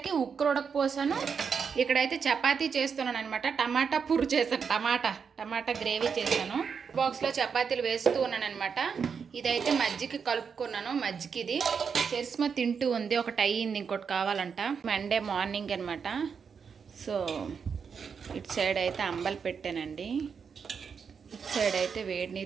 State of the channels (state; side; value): quieter; left; 6.3 dB